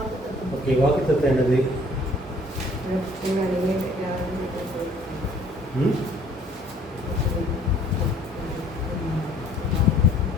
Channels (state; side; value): normal; both; correlation 0.57